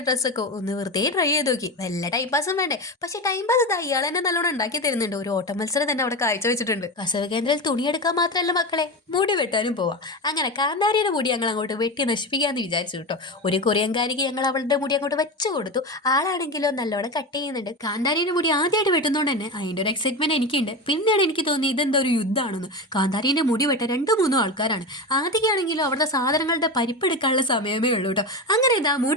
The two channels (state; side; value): normal; both; correlation 0.21